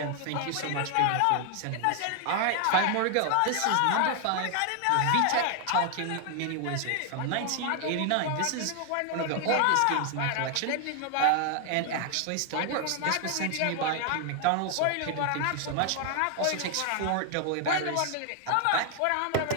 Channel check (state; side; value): different; both; correlation 0.00